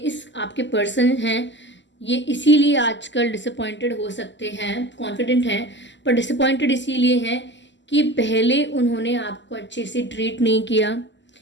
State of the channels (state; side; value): late; right; 0.53 ms